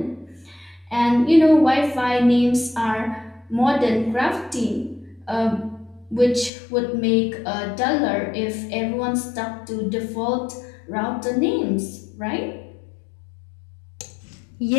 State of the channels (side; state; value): right; drops out; at 6.5 s